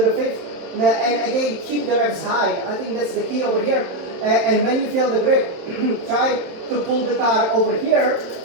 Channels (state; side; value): late; left; 27 ms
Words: 5th, and again keep the revs high. I think that's the key over here. And when you feel the grip, try to pull the car over here,